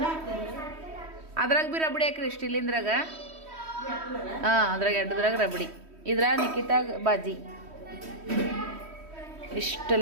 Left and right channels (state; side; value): late; left; 3.1 ms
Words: ಅದ್ರಾಗ ಬಿ ರಬಡಿ ಹಾಕ್ರಿ ಸ್ಟೀಲಿಂದ್ರಾಗ. ಅದ್ರಾಗ ಎಡ್ಡದ್ರಾಗ ರಬಡಿ, ಇದ್ರ ನಿಖಿತಾಗ ಬಾಜಿ.